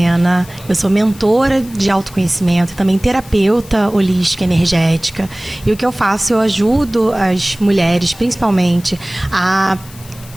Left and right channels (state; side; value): noise; left; hiss, 21 dB below the sound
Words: eu sou mentora de autoconhecimento e também terapeuta holística e energética. E o que eu faço, eu ajudo as mulheres, principalmente, a